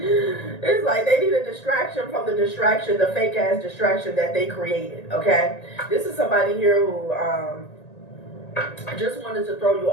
It's like they need a distraction from the distraction, the fake ass distraction that they created, okay? This is somebody here who just wanted to throw you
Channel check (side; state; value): right; late; 1.9 ms